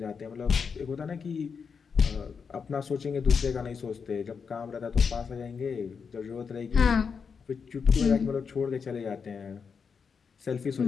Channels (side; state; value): right; quieter; 5.9 dB